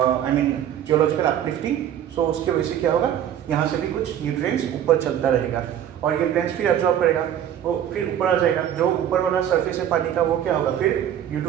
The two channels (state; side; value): quieter; left; 10.2 dB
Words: I mean geological uplifting. So उसके वजह से क्या होगा, यहाँ से भी कुछ न्यूट्रिएंट्स ऊपर चलता रहेगा, और ये प्लांट्स फिर एब्जॉर्ब करेगा, वो फिर ऊपर आ जाएगा, जो ऊपर वाला सरफेस है पानी का, वो क्या होगा, फिर due